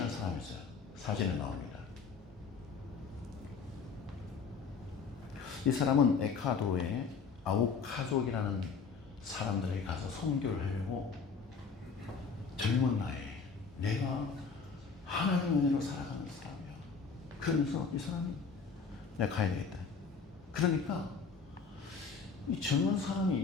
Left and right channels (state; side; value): quieter; right; 5.3 dB